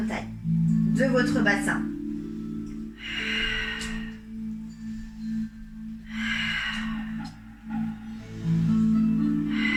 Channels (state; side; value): identical; both; correlation 1.00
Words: taille, de votre bassin.